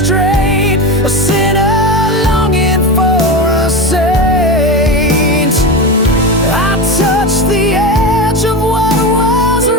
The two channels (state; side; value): normal; both; correlation 0.21